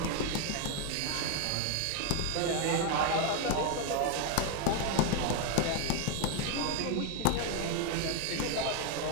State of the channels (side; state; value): both; different; correlation 0.01